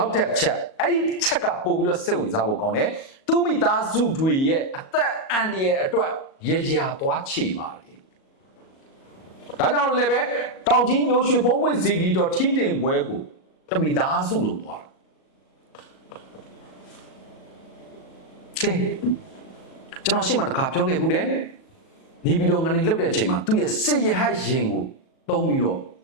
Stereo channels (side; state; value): right; late; 37 ms